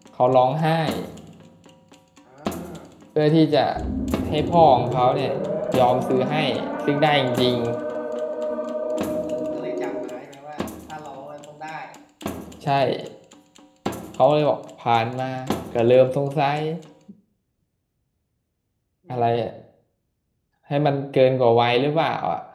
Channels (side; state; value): both; identical; correlation 1.00